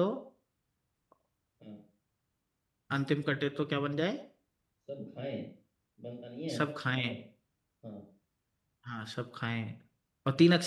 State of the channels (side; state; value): both; identical; correlation 1.00